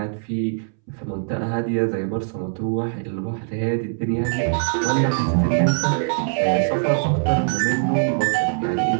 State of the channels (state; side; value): silent; left; 64 dB below the other